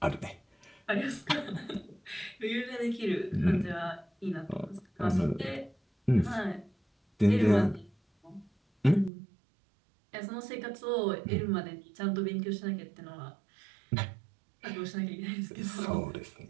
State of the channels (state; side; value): drops out; left; at 9.1 s